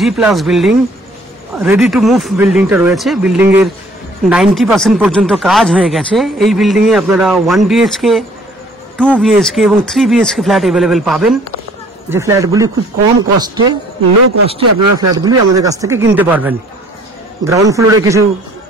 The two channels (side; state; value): both; normal; correlation 0.56